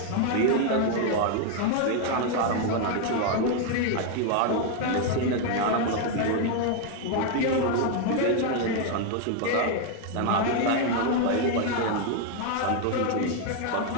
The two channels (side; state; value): both; different; correlation 0.01